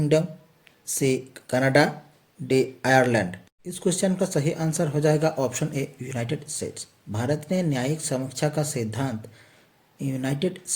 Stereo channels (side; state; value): both; identical; correlation 1.00